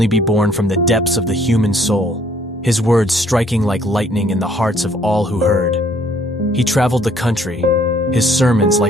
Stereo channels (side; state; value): both; normal; correlation 0.62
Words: be born from the depths of the human soul, his words striking like lightning in the hearts of all who heard. He traveled the country, his sermons